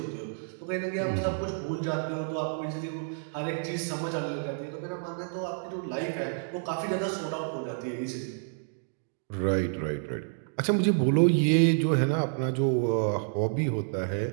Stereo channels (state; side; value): silent; left; digital silence